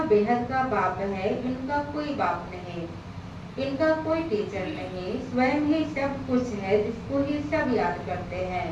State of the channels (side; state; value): both; identical; correlation 1.00